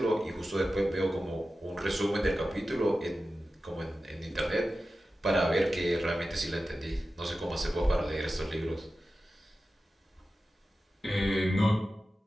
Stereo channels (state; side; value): normal; both; correlation 0.94